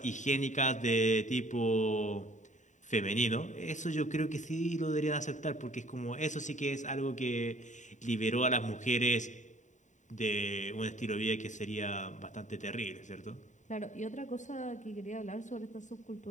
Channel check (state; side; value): late; right; 0.36 ms